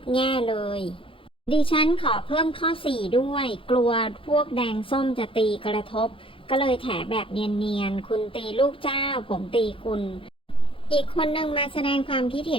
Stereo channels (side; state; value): right; late; 0.26 ms